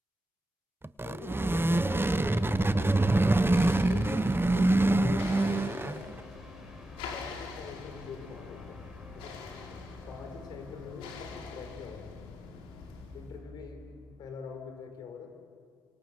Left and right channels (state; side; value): normal; both; correlation 0.91